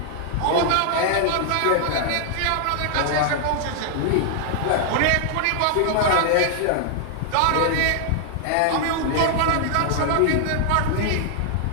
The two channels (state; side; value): different; both; correlation -0.01